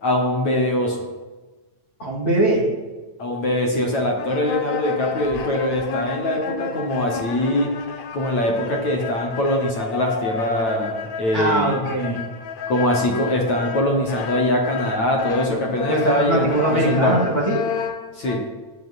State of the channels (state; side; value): late; right; 9.0 ms